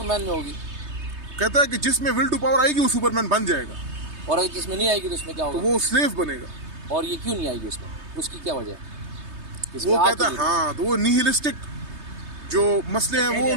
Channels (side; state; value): left; late; 3.2 ms